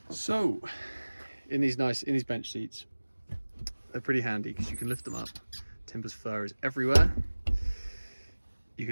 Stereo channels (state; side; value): inverted; both; correlation -1.00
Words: So in these bench seats, they're pretty handy because you can lift them up. Timber's fur is everywhere. You